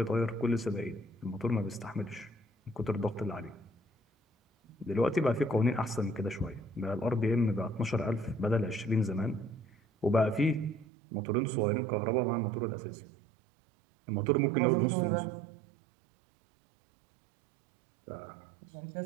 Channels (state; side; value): drops out; left; at 10.9 s